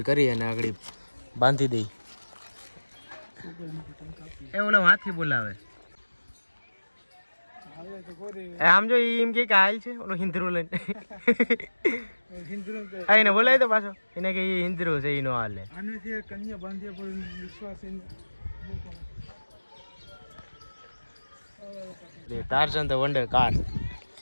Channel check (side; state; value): both; inverted; correlation -1.00